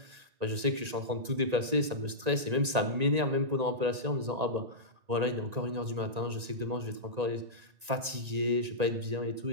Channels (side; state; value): left; late; 1.9 ms